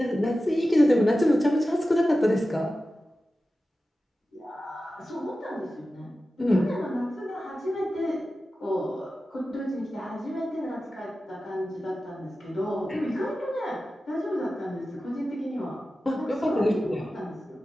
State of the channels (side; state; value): both; normal; correlation 0.94